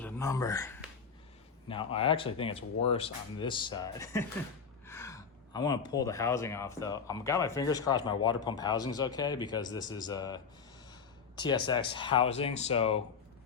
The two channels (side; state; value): right; quieter; 5.9 dB